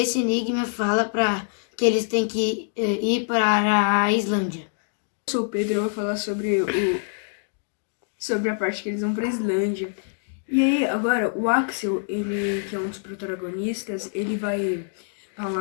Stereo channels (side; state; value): right; silent; digital silence